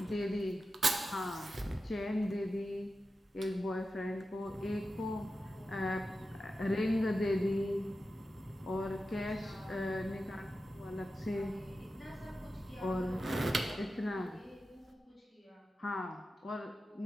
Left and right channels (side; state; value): both; normal; correlation 0.91